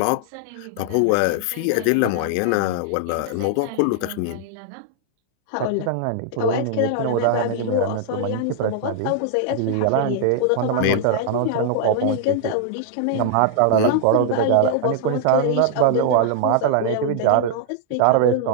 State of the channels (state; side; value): different; both; correlation -0.01